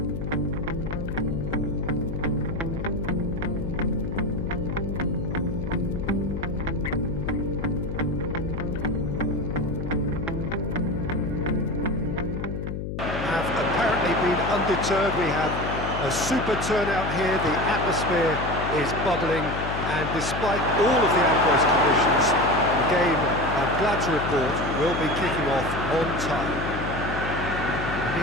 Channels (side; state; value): left; noise; hum, 5 dB below the sound